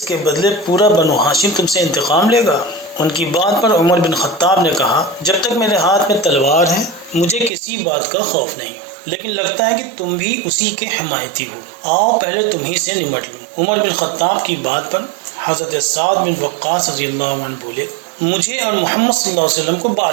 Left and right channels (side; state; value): left; drops out; at 7.5 s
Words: بدلے پورا بنو ہاشم تم سے انتقام لے گا؟ ان کی بات پر عمر بن خطاب نے کہا، جب تک میرے ہاتھ میں تلوار ہے مجھے کسی بات کا خوف نہیں، لیکن لگتا ہے کہ تم بھی اسی کے حمایتی ہو، آؤ پہلے تم ہی سے نمٹ لوں۔ عمر بن خطاب کی بات پر حضرت سعد بن وقاص رضی اللہ عنہ بولے، مجھے اور محمد صلی اللہ علیہ وسلم کو بعد